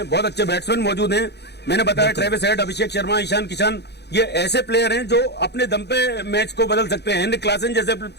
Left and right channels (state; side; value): late; right; 0.49 ms